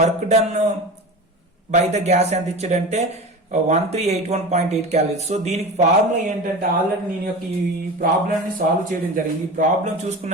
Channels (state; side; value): normal; both; correlation 0.30